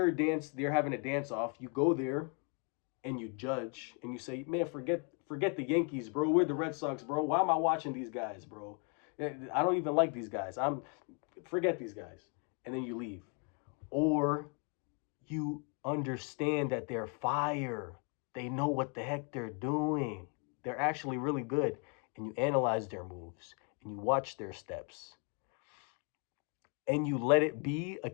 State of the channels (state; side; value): quieter; right; 38.2 dB